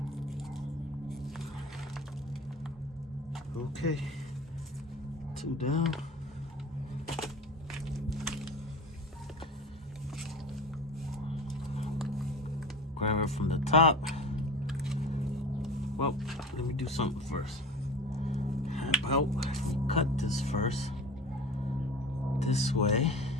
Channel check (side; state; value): both; normal; correlation 0.35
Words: okay, 2 down. Grab it from the top. Well, let me do something first. How about we cut this first? This way.